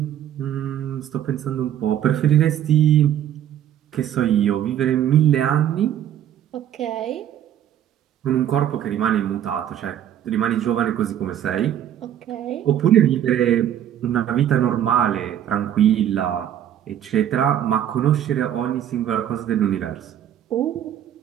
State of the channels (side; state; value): left; quieter; 10.6 dB